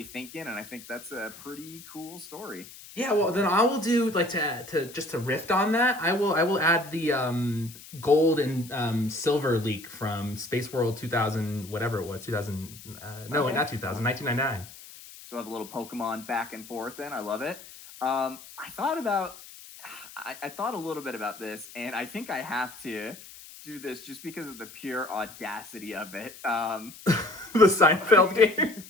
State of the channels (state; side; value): noise; left; hiss, 17 dB below the sound